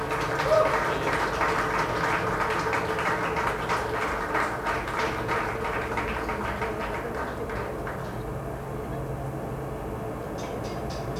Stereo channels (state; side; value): identical; both; correlation 1.00